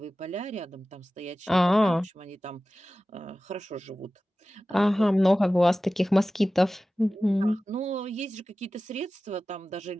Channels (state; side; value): normal; both; correlation 0.96